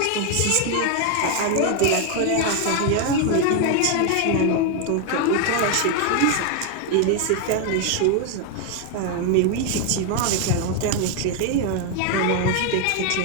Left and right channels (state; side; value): different; both; correlation 0.01